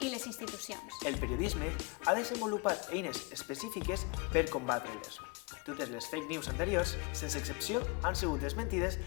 les institucions. El periodisme ha desenvolupat eines específiques per combatre-les. Totes les fake news anteriors, sense excepció, han sigut desmentides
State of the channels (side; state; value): right; quieter; 26.5 dB